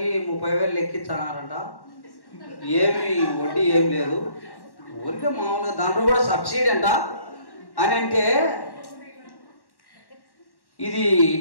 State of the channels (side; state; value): right; late; 1.1 ms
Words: 30,000 ఎక్కించన్నారంట. ఏమి వడ్డీ ఏం లేదు, ఊరికే మామూలుగా దాంట్లో కూడా సబ్సిడీ అంట అని. అంటే ఇది